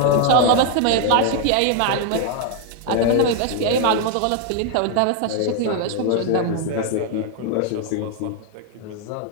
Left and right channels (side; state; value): both; different; correlation 0.00